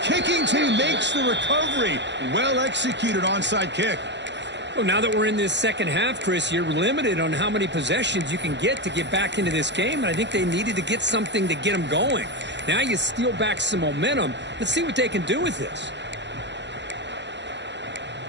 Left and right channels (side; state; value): left; late; 0.52 ms